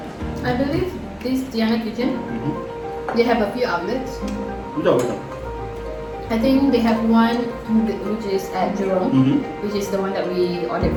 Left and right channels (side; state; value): both; identical; correlation 1.00